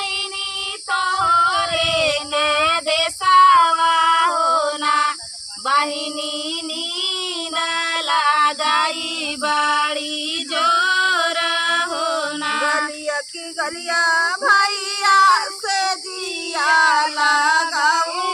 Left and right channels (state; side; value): identical; both; correlation 1.00